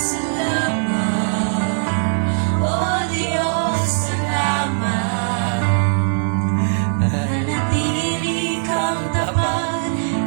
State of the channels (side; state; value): left; silent; digital silence